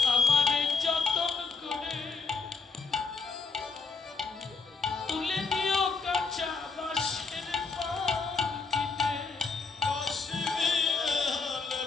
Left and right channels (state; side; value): quieter; right; 4.8 dB